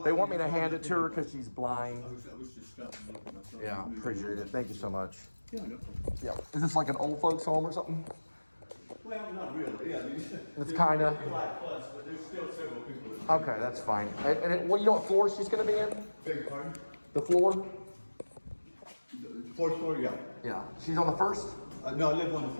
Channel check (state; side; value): inverted; both; correlation -1.00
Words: they want me to hand it to her because she's blind. I was just stopping looking myself. Yeah, appreciate it. Thank you so much. Yeah, no problem. Yeah. Is this like an old folks home or something? Well, not really. Yeah, I mean, it's kind of. But there's still several people. Okay, that's fine. And you know what floor she's going to be in? Beg your pardon? The floor? The fourth floor, yeah. Yeah. She's on the first? No, I live on the